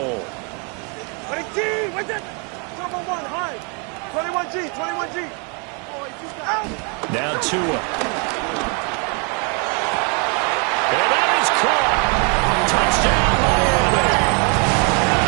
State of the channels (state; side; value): quieter; left; 35.7 dB